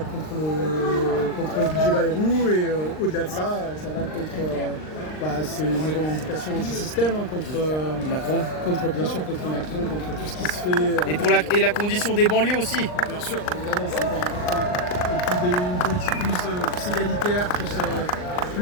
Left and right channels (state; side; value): late; right; 39 ms